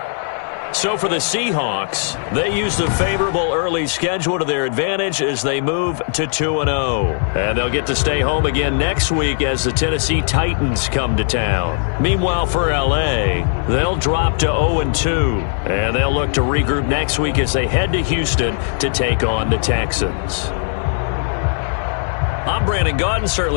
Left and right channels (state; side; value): silent; right; 66 dB below the other